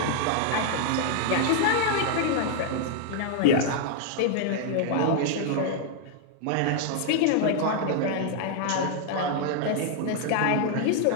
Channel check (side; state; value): both; different; correlation 0.00